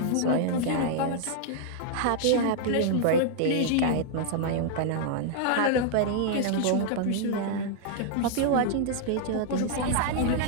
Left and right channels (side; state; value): both; different; correlation -0.01